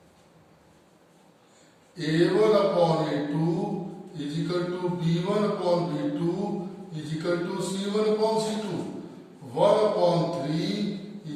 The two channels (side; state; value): both; identical; correlation 1.00